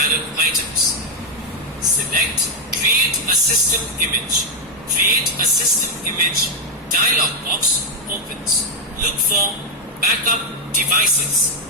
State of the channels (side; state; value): both; normal; correlation 0.02